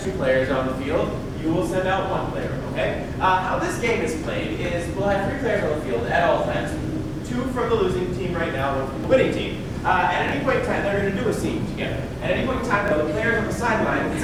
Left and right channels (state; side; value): identical; both; correlation 1.00